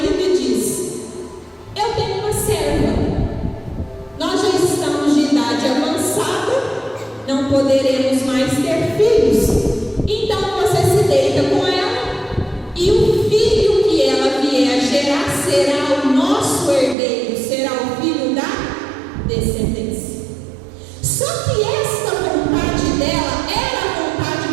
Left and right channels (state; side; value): drops out; left; at 16.9 s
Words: e diz: eu tenho uma serva, nós já estamos de idade avançada, não poderemos mais ter filhos, então você se deita com ela e o filho que ela vier a gerar será o nosso herdeiro, será o filho da descendência. Só que esta vontade dela era a vontade